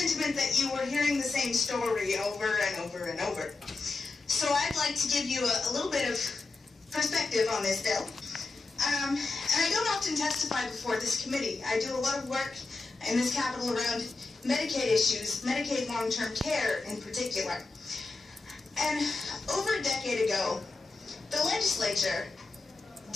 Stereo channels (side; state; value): right; quieter; 3.7 dB